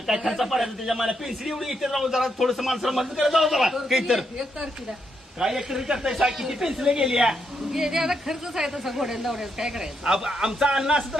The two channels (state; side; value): normal; both; correlation 0.79